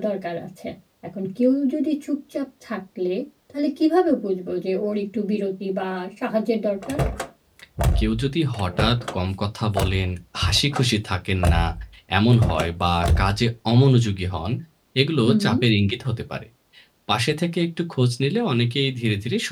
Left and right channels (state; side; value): identical; both; correlation 1.00